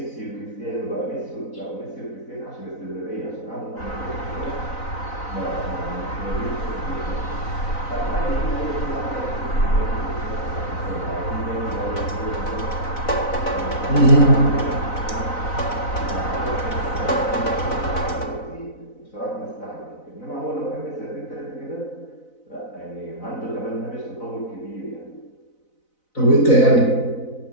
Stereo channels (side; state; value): right; late; 4.0 ms